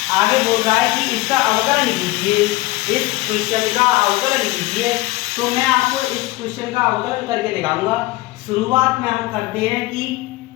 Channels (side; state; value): right; quieter; 19.7 dB